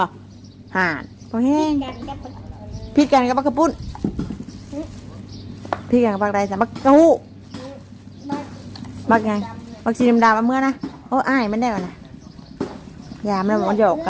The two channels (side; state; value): both; identical; correlation 1.00